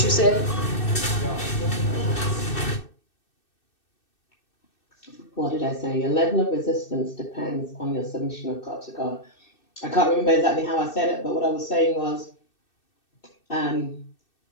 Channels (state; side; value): late; right; 2.6 ms